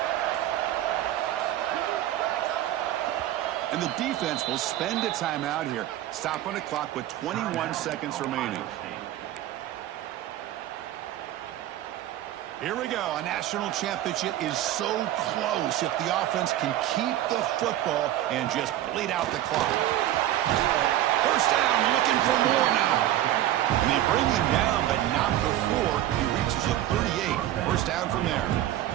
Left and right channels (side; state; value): left; quieter; 13.3 dB